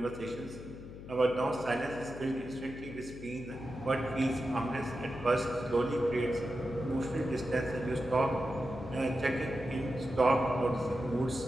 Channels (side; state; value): left; noise; hum, 13 dB below the sound